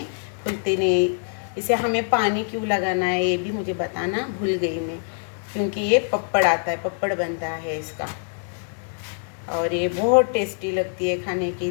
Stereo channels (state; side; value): silent; right; 62 dB below the other